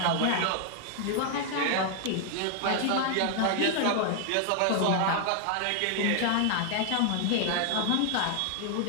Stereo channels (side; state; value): both; different; correlation 0.00